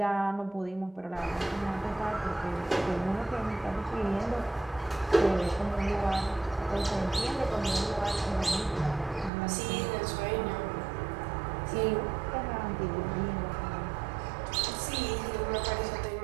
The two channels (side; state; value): left; drops out; at 9.3 s